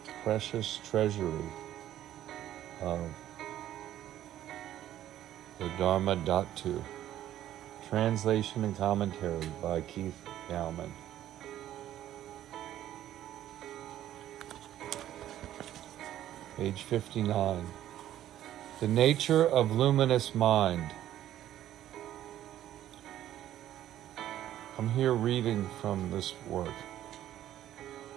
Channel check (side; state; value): left; quieter; 12.3 dB